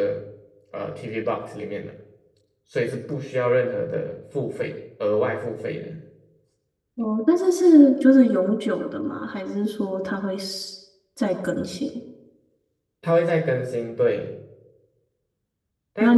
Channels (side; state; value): both; identical; correlation 1.00